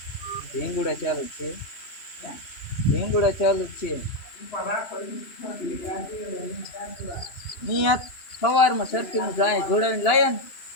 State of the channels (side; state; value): right; late; 2.9 ms